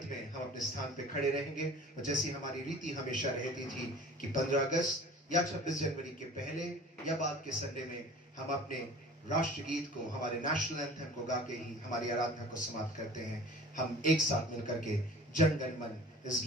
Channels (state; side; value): normal; both; correlation 0.44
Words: में हम अपने स्थान पे खड़े रहेंगे और जैसी हमारी रीति हमेशा रहती थी कि 15 अगस्त या 26 जनवरी के पहले या बाद के संडे में हम अपने राष्ट्रगीत को, हमारे नेशनल एंथम को गा के ही हमारी आराधना को समाप्त करते हैं। हम एक साथ मिलकर के जन गण मन इस